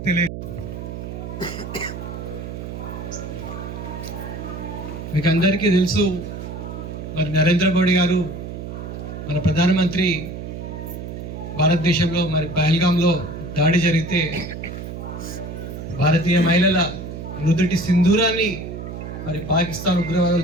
తెలియ. మీకు అందరికీ తెలుసు, మరి నరేంద్ర మోడీ గారు మన ప్రధానమంత్రి భారతదేశంలో మరి పహల్గాంలో దాడి జరిగితే భారతీయ మహిళల నుదుటి సింధూరాన్ని మరి పాకిస్తాన్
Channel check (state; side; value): noise; right; hum, 8 dB below the sound